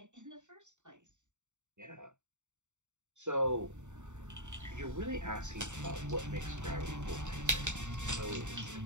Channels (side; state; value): left; late; 0.84 ms